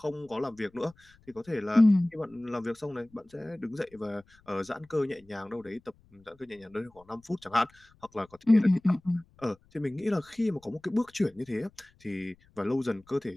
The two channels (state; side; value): noise; left; rumble, 30 dB below the sound